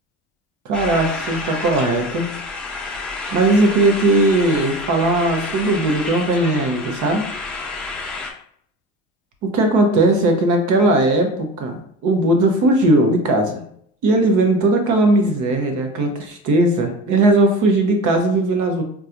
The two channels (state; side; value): normal; both; correlation 0.34